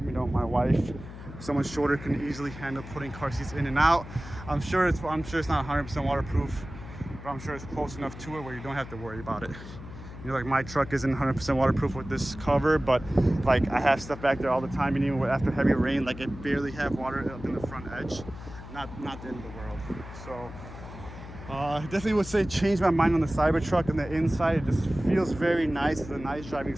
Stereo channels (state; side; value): noise; left; hum, 13 dB below the sound